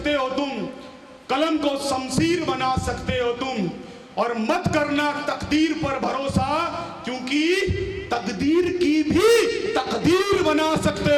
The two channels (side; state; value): both; identical; correlation 1.00